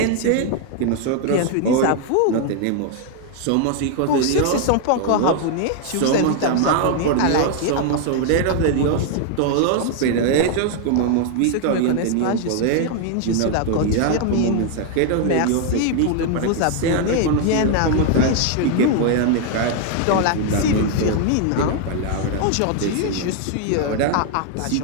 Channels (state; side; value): different; both; correlation 0.00